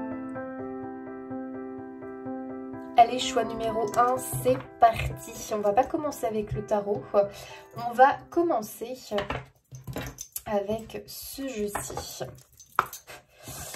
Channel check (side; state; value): both; identical; correlation 1.00